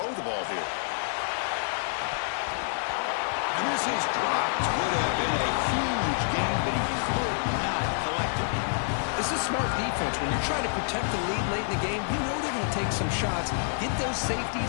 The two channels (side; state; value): right; silent; 59 dB below the other